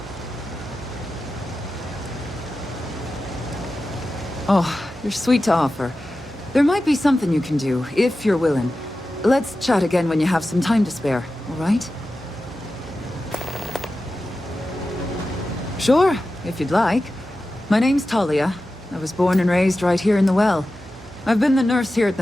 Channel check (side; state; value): both; normal; correlation 0.93